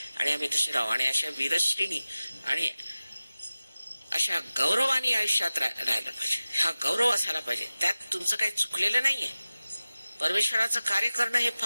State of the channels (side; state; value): both; inverted; correlation -0.97